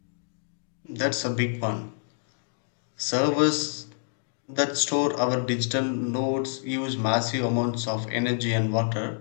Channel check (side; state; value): right; silent; digital silence